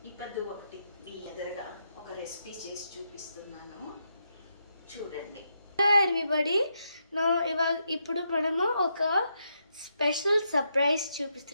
ఇప్పుడు ఒకటి మీ ఎదురుగా ఒక రెసిపీ చేసి చూపిస్తున్నాను, చూడండి. ఎవ్రీబడి ఇప్పుడు మనము ఒక స్పెషల్ సర్ప్రైజ్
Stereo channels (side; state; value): both; inverted; correlation -0.81